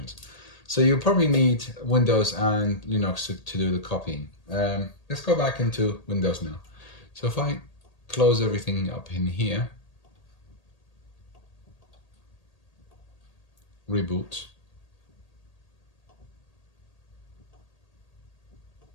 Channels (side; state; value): right; late; 1.8 ms